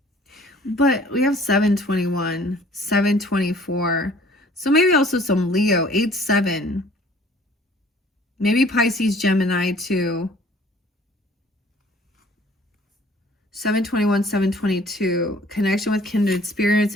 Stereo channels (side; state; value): both; normal; correlation 0.54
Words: But we have 721, 724. So maybe also some Leo, 8-7. Maybe Pisces, Gemini too. 721, 722. Connection with kindred spirits